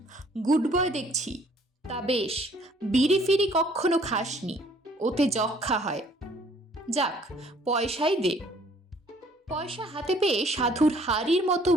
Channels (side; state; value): both; normal; correlation 0.60